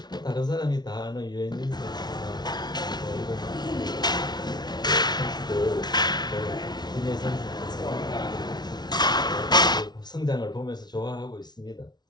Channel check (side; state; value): right; late; 0.20 ms